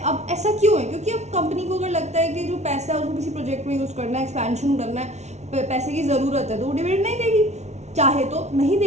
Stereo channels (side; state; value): left; late; 0.32 ms